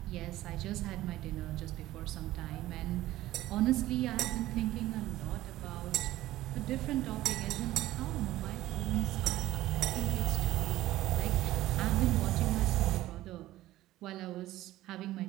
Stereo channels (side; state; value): left; quieter; 15.6 dB